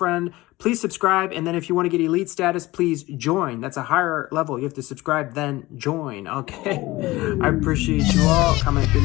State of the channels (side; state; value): right; quieter; 19.4 dB